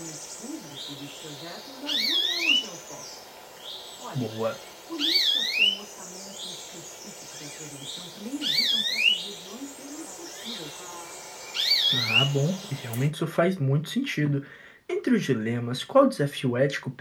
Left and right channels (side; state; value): both; identical; correlation 1.00